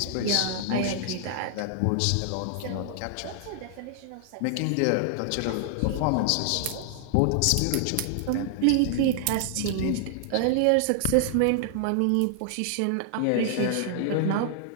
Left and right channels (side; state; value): both; different; correlation 0.00